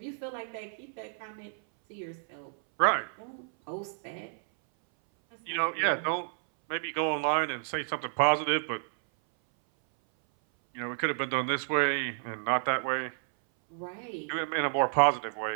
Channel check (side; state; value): left; silent; 57 dB below the other